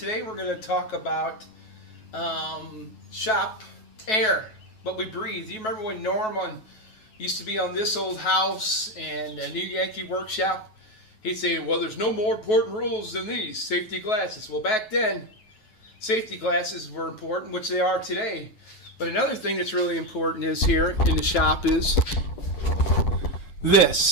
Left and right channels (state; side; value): late; right; 9.3 ms